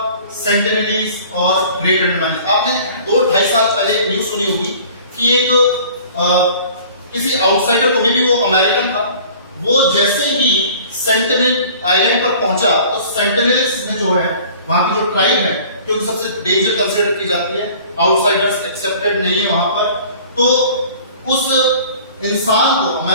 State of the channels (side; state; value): both; inverted; correlation -0.48